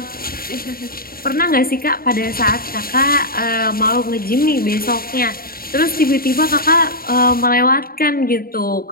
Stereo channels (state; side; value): late; right; 0.43 ms